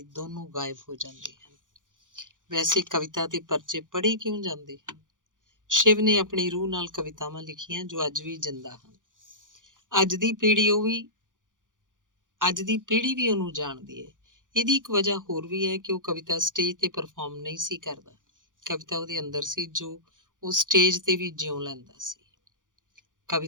ਦੋਨੋਂ ਗਾਇਬ ਹੋ ਜਾਂਦੇ ਹਨ। ਵੈਸੇ ਕਵਿਤਾ ਤੇ ਪਰਚੇ ਪੜ੍ਹੇ ਕਿਉਂ ਜਾਂਦੇ ਹਨ? ਸ਼ਿਵ ਨੇ ਆਪਣੀ ਰੂਹ ਨਾਲ ਕਵਿਤਾਵਾਂ ਲਿਖੀਆਂ ਜੋ ਅੱਜ ਵੀ ਜਿੰਦਾ ਹਨ। ਅੱਜ ਦੀ ਪੀੜ੍ਹੀ ਵੀ ਉਹਨੂੰ ਜਾਣਦੀ ਹੈ। ਇਹਦੀ ਇੱਕ ਵਜ੍ਹਾ ਹੋਰ ਵੀ ਹੈ ਕਿ ਉਹ ਕਵਿਤਾ ਸਟੇਜ ਤੇ ਪਰਫਾਰਮ ਨਹੀਂ ਸੀ ਕਰਦਾ। ਕਵਿਤਾ ਉਹਦੇ ਅੰਦਰ ਸੀ, ਜੋ ਉਹ ਸਟੇਜ ਤੇ ਵੀ ਜਿਉਂ ਲੈਂਦਾ ਸੀ।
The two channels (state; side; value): late; left; 0.88 ms